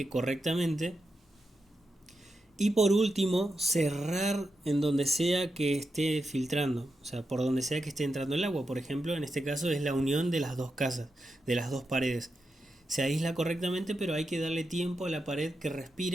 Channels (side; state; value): both; normal; correlation 0.87